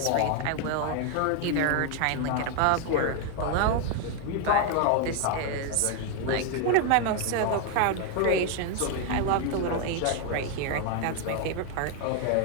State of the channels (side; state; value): both; different; correlation 0.01